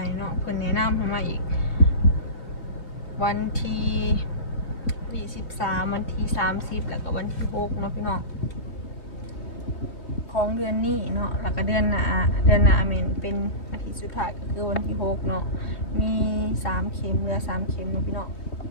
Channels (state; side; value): late; right; 3.2 ms